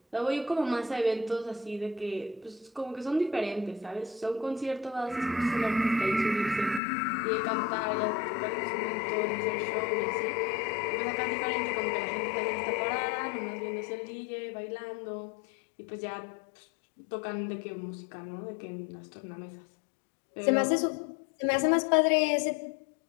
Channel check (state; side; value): drops out; right; at 6.8 s